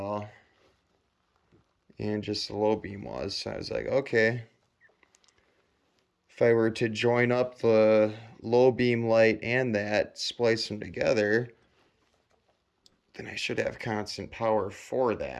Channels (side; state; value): both; identical; correlation 1.00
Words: And just the low beam was. So I was like, okay, if I were to join up the low beam light and that, splice them together, then I should have constant power for